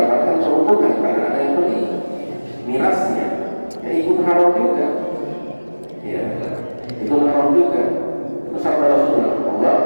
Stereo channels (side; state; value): both; inverted; correlation -1.00